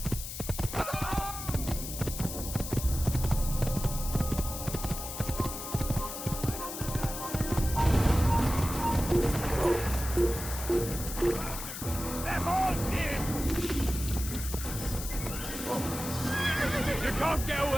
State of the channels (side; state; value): left; noise; hiss, 8 dB below the sound